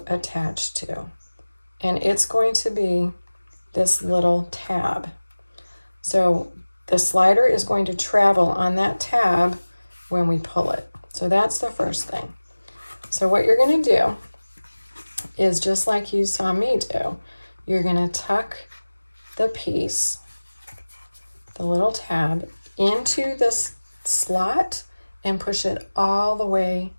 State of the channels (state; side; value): inverted; both; correlation -1.00